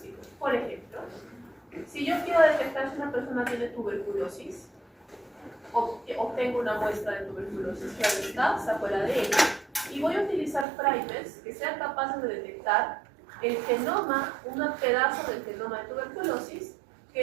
Por ejemplo, si yo quiero detectar si una persona tiene tuberculosis, obtengo una muestra de tuberculosis, claro está, saco el ADN, y voy a utilizar primers que sean capaces de detectar el genoma, un pedazo del genoma de tuberculosis que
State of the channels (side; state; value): left; drops out; at 10.7 s